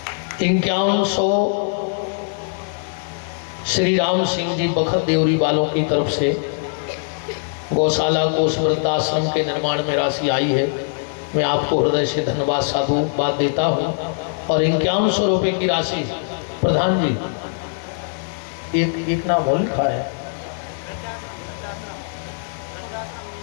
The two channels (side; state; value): right; silent; digital silence